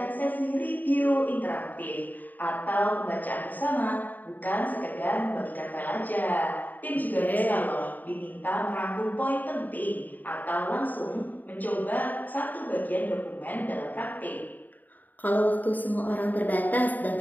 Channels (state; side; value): late; right; 0.084 ms